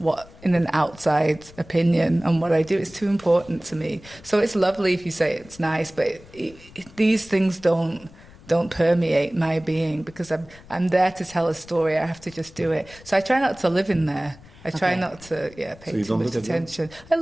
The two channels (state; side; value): noise; left; rumble, 22 dB below the sound